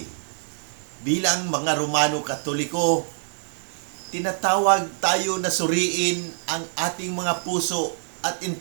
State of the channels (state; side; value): silent; left; digital silence